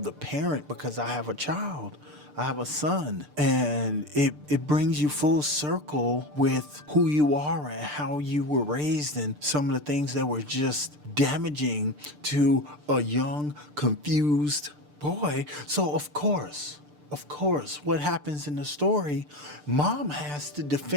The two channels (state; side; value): late; left; 6.7 ms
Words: the parent because I have a child. I have a son. And it brings you full circle with who you are and how you were raised and some of the things that were just damaging to a young, confused boy. So of course, what happens in the story, mom has to